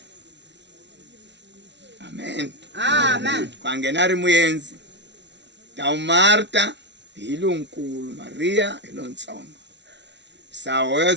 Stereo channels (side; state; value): left; late; 0.51 ms